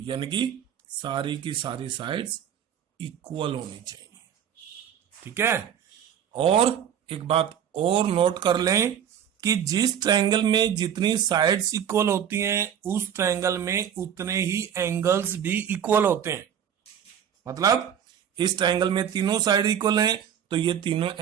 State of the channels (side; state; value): left; quieter; 9.0 dB